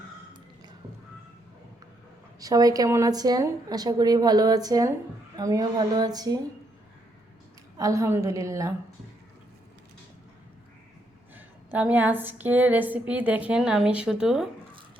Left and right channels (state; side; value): normal; both; correlation 0.75